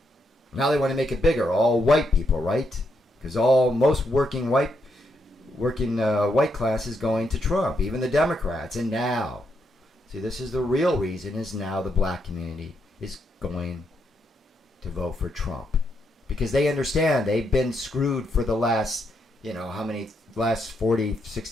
Now they want to make it bigger. All white people, right? Because most working white class is going to Trump, even the Democrats. And now, see, this is the real reason, is now the black community is going to vote for Trump. Because they understand they've been screwed for the last, last 40,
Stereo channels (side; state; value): both; normal; correlation 0.79